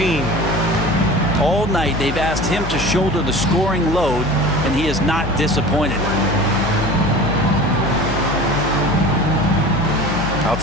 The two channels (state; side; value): noise; left; hum, 7 dB below the sound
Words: All night they've asked him to shoulder the scoring load, and he is not disappointed.